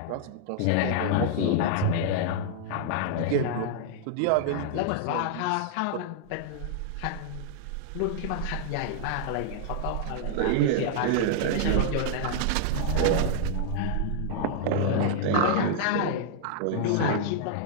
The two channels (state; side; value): different; both; correlation -0.01